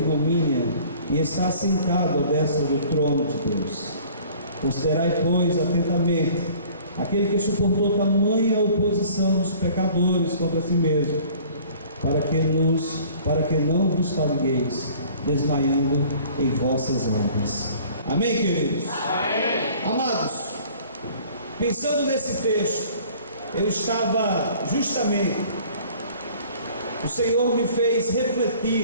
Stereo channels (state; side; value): inverted; both; correlation -0.51